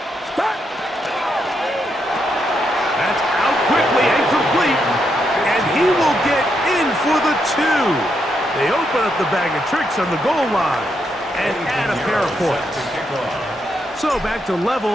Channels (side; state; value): both; normal; correlation 0.80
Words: That's out quickly and complete. And he will get in for the 2. They open up the bag of tricks on the goal line and add a pair of points. So back to